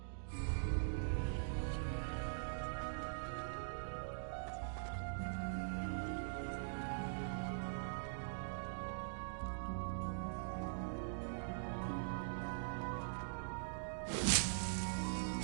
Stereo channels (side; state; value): left; silent; digital silence